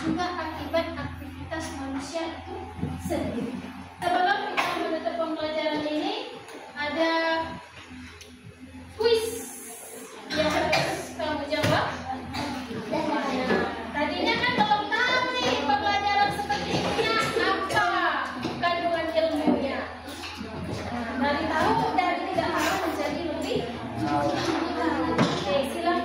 akibat aktivitas manusia itu sendiri. Sebelum kita menutup pembelajaran ini, ada kuis yang harus kamu jawab. Tadinya kan belum tahu nih pembelajaran seperti ini apa kandungan ilmunya. Dari tahu dari tidak tahu menjadi lebih. Oke,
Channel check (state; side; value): identical; both; correlation 1.00